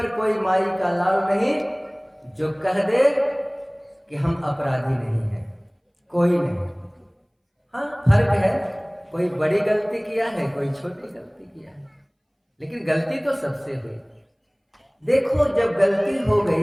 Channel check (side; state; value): both; identical; correlation 1.00